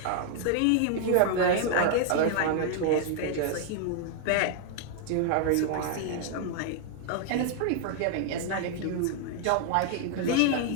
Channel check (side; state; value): both; different; correlation 0.00